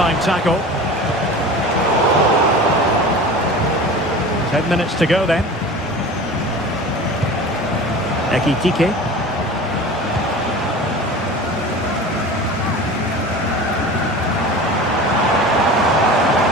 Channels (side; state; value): both; normal; correlation 0.36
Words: tackle. 10 minutes to go then. Ekitike.